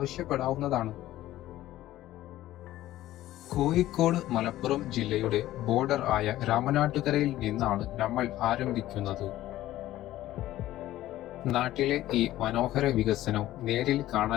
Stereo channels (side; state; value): right; quieter; 14.7 dB